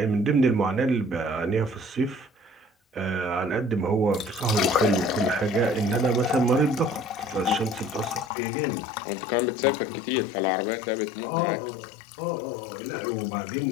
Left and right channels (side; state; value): right; drops out; at 8.3 s